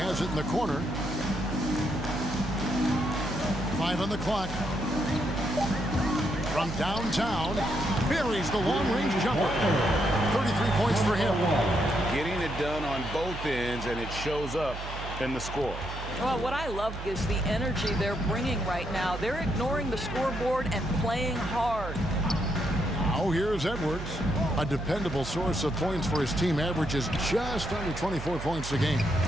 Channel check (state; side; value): noise; right; hum, 9 dB below the sound